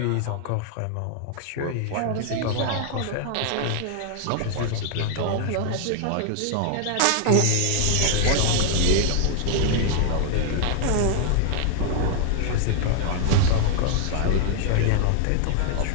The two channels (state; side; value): different; both; correlation 0.00